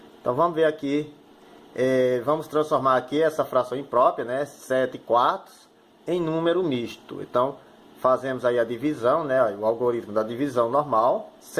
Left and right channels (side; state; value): both; identical; correlation 1.00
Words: Então, vamos ver aqui. Vamos transformar aqui essa fração imprópria, né, 7 quartos, em número misto. Então, fazemos aí a divisão, né, o algoritmo da divisão normal.